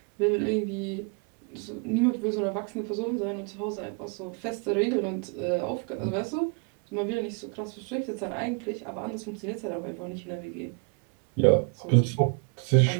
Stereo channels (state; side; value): quieter; left; 34.9 dB